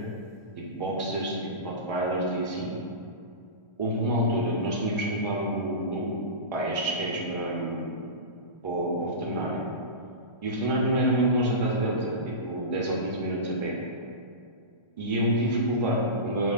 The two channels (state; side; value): late; right; 1.3 ms